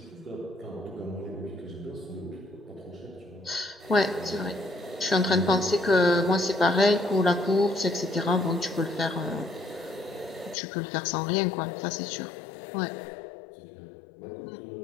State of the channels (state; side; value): drops out; right; at 10.6 s